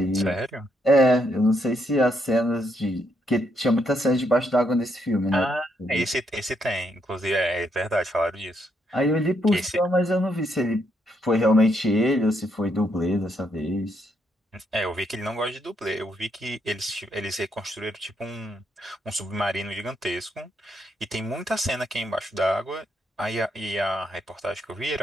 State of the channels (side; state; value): both; normal; correlation 0.76